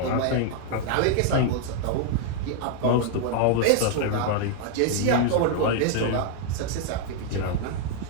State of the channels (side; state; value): both; different; correlation 0.00